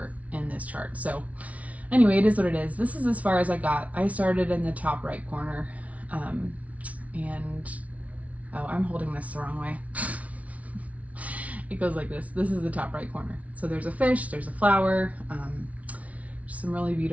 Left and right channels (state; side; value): late; left; 0.067 ms